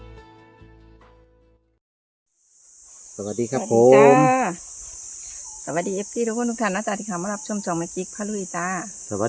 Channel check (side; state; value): both; identical; correlation 1.00